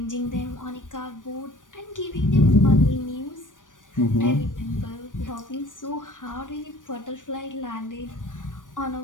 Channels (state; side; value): late; right; 0.88 ms